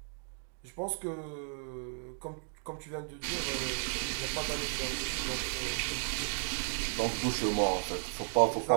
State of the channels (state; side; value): silent; left; 55 dB below the other